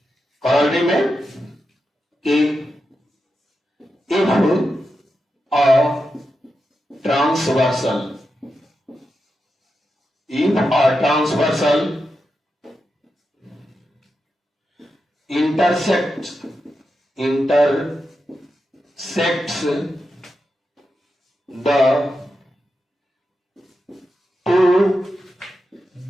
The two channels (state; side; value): normal; both; correlation 0.88